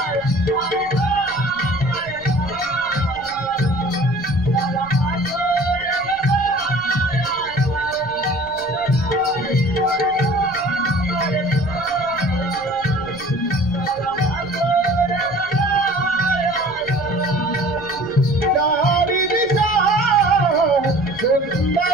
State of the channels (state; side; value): noise; left; rumble, 22 dB below the sound